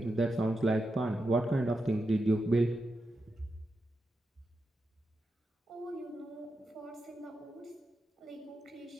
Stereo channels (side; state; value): both; normal; correlation 0.87